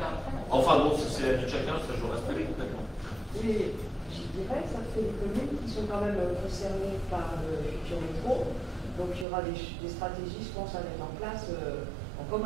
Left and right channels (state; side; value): drops out; left; at 9.2 s